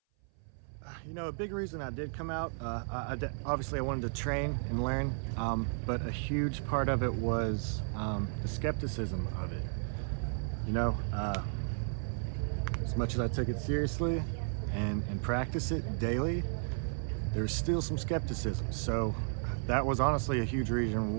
You know, a big reason I did come out, obviously I wanted to train and learn, but a huge part of it was the skepticism of it. You know, as much as I took it seriously and practice it daily, there's still some skepticism. So that was honestly a huge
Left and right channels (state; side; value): silent; left; 55 dB below the other